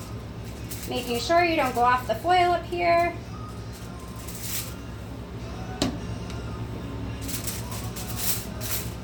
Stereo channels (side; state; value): both; identical; correlation 1.00